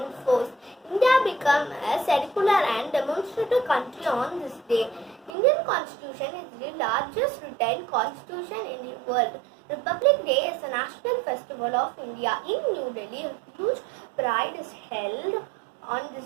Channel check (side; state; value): left; drops out; at 5.3 s